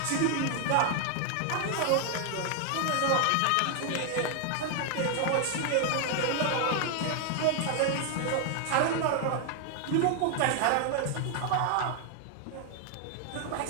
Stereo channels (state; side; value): different; both; correlation 0.00